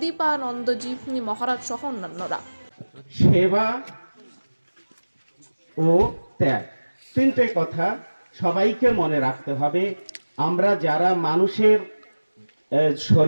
মহারাজ সহ অন্যান্যরা। সেবা ও ত্যাগ, তিনটে কথা সবাইকে মনে রাখতে হবে। আমরা যারা মানুষের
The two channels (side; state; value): both; inverted; correlation -1.00